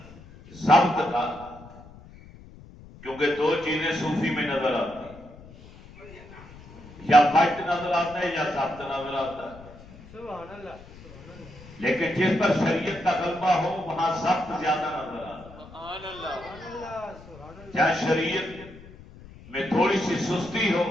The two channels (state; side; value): noise; left; rumble, 19 dB below the sound